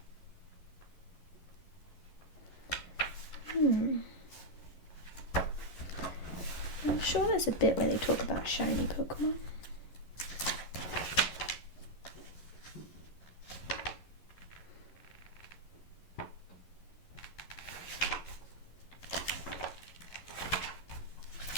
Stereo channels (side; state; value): right; late; 11 ms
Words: I'm sure there's a bit where they talk about shiny Pokemon.